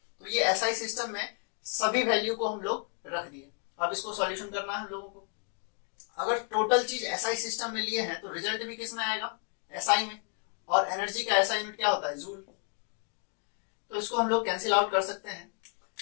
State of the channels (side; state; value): right; quieter; 39.7 dB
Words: तो ये SI सिस्टम में सभी वैल्यू को हम लोग रख दिए। अब इसको सॉल्यूशन करना है हम लोगों को। अगर टोटल चीज SI सिस्टम में लिए हैं तो रिजल्ट भी किस में आएगा? SI में। और एनर्जी का SI यूनिट क्या होता है? जूल। तो इसको हम लोग कैंसिल आउट कर सकते हैं।